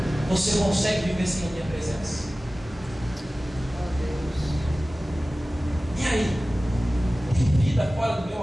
Você consegue viver sem a minha presença? E aí? Tem vida fora do meu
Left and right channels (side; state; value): both; normal; correlation 0.97